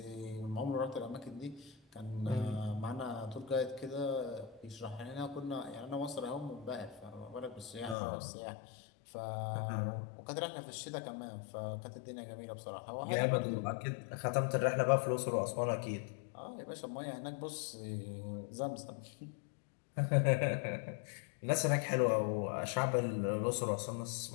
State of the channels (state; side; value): drops out; right; at 8.0 s